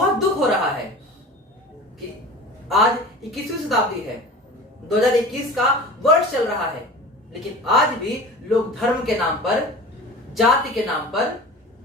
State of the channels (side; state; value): both; normal; correlation 0.37